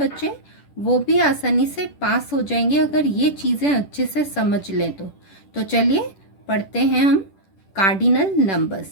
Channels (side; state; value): right; late; 10 ms